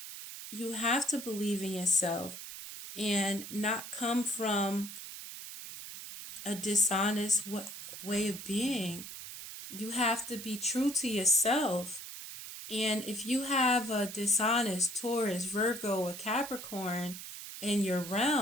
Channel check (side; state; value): right; noise; hiss, 10 dB below the sound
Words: you have to believe in yourself and not come from a dishonest way of being. You have to be true to yourself. And if you have a dishonest Taurus, Virgo, or Capricorn, in your